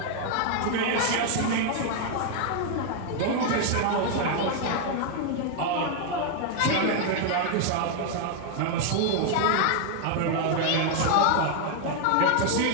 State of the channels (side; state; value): both; different; correlation 0.00